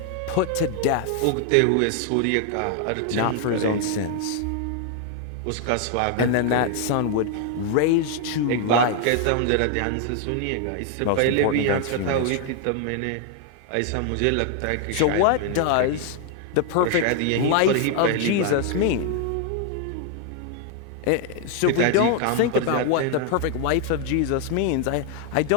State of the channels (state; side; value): different; both; correlation 0.00